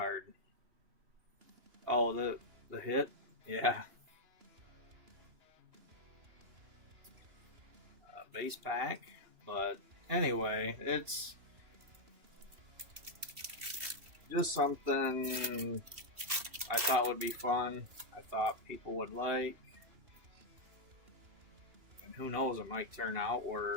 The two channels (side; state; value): left; late; 2.9 ms